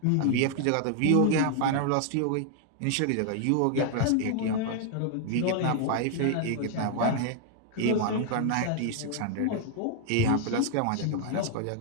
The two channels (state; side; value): different; both; correlation 0.00